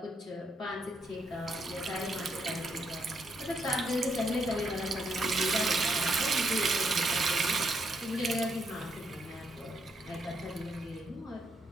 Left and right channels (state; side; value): normal; both; correlation 0.77